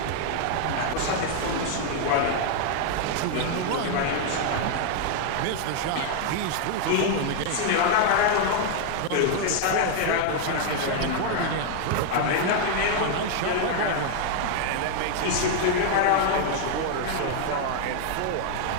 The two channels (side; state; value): both; different; correlation 0.00